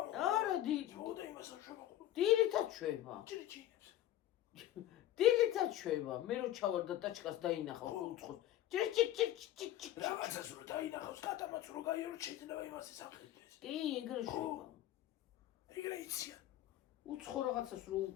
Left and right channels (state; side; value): quieter; right; 13.2 dB